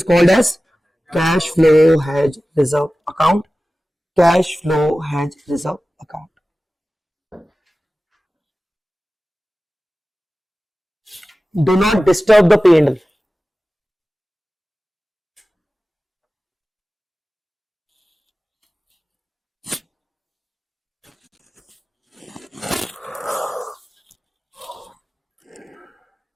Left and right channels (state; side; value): normal; both; correlation 0.96